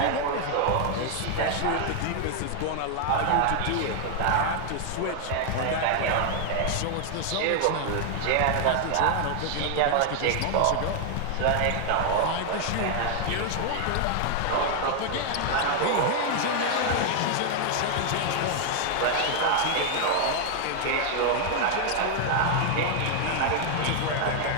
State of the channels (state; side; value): different; both; correlation 0.00